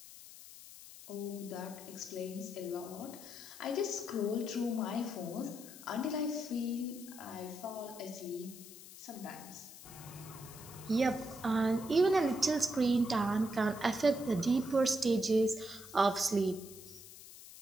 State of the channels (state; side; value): noise; left; hiss, 16 dB below the sound